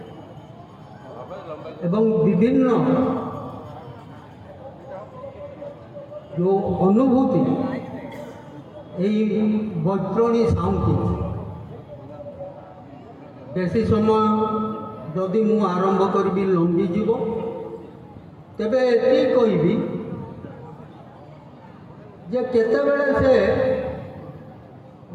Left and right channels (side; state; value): both; identical; correlation 1.00